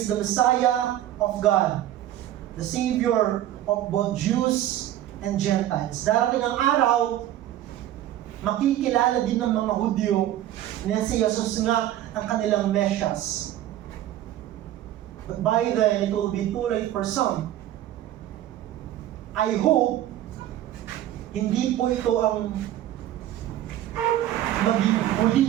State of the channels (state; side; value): quieter; left; 12.7 dB